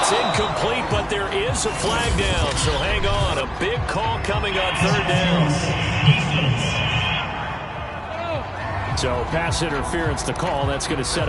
incomplete, but there is a flag down, so hang on. A big call coming on 3rd down. So pass interference to call. That's going to set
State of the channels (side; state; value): both; identical; correlation 1.00